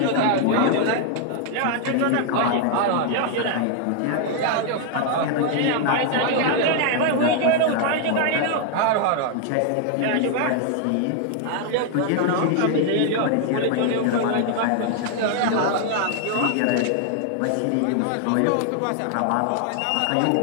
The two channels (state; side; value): different; both; correlation 0.00